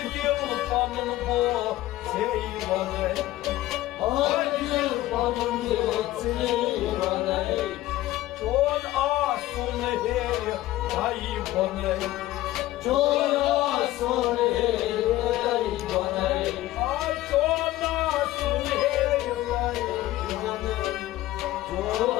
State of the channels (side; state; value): right; quieter; 15.9 dB